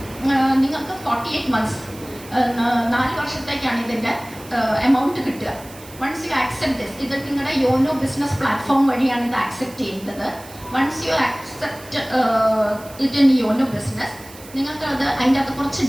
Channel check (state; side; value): noise; right; hiss, 19 dB below the sound